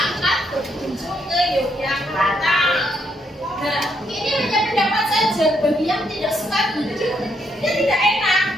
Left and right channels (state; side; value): normal; both; correlation 0.75